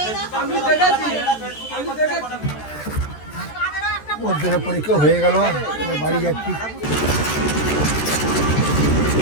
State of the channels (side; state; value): right; late; 14 ms